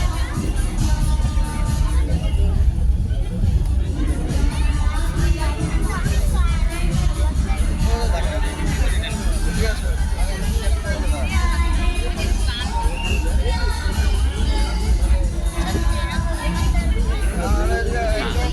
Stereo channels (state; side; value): identical; both; correlation 1.00